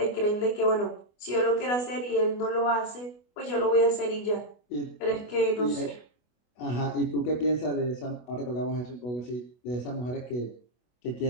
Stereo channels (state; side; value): late; right; 24 ms